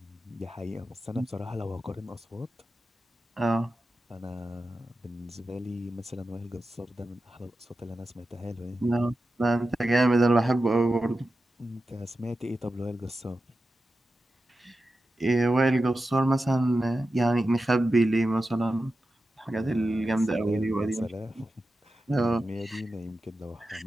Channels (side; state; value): both; normal; correlation 0.92